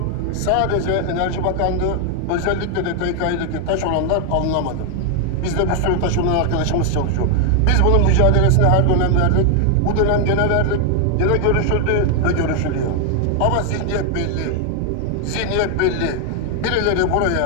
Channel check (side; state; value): both; different; correlation 0.00